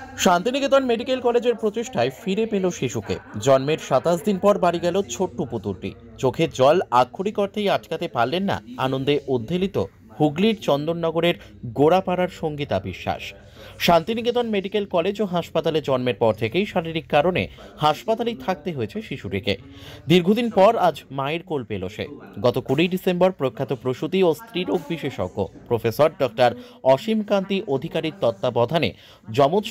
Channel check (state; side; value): identical; both; correlation 1.00